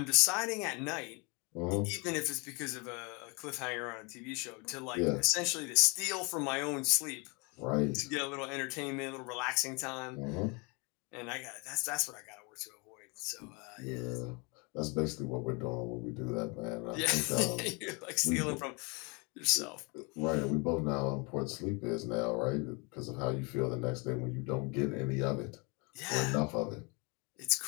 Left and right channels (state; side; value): quieter; right; 30.5 dB